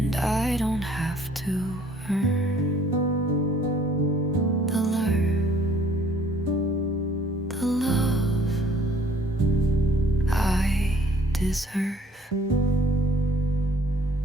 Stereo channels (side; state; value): both; normal; correlation 0.59